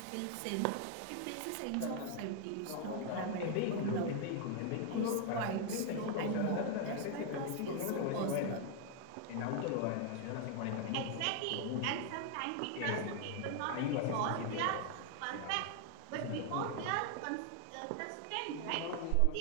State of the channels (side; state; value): both; different; correlation 0.00